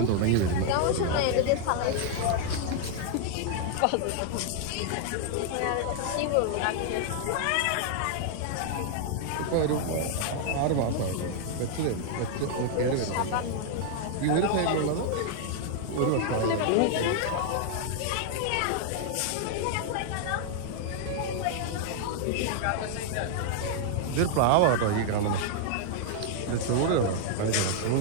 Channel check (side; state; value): both; different; correlation 0.00